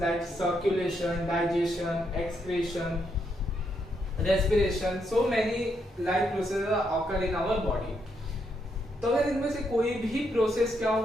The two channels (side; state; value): both; normal; correlation 0.78